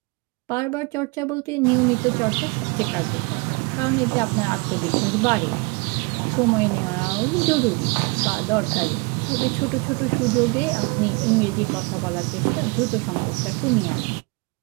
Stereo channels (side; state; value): left; quieter; 29.1 dB